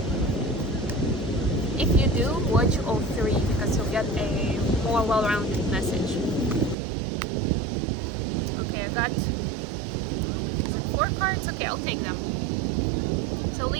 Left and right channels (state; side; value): drops out; left; at 6.8 s